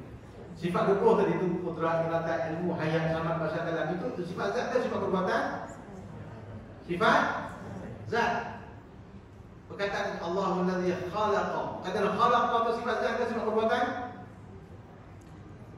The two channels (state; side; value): identical; both; correlation 1.00